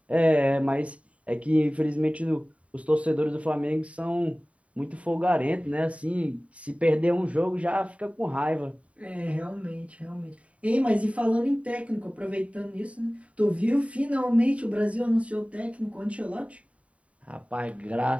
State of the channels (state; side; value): late; left; 0.065 ms